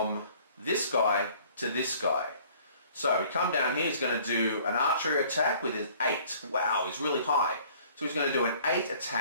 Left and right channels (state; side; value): inverted; both; correlation -0.54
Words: this guy to this guy. So we come down here, he's going to do an archery attack with his 8. Wow, he's really high. So he's going to do an 8